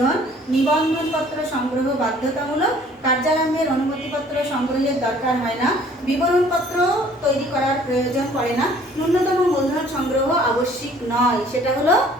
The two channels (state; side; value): normal; both; correlation 0.55